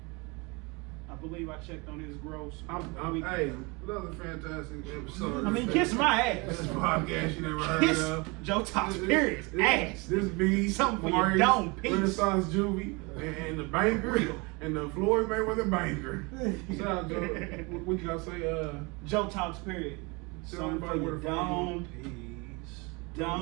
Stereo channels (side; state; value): left; quieter; 27.7 dB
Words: I believe I checked on his gross. Hey, another fantastic episode. I mean, kiss my ass. This podcast you never heard Kiss of. Joe Talks Periods ass. This be Something for your Maurice, dome piece. Renaissance Juvie, and the banker, and the Floyd Mayweather banker. Shout out, Joe. What you gotta say? Joe Talks Period. Tell Something for everybody your where to find dome piece.